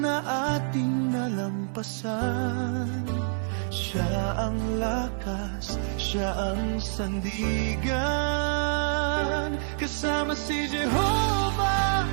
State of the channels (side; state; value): left; silent; 56 dB below the other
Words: na ating nalampasan, siya ang lakas, siya ang sandigan. Kasama si Jehovah,